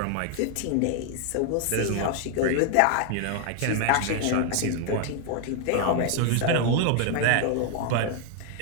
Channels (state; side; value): different; both; correlation 0.00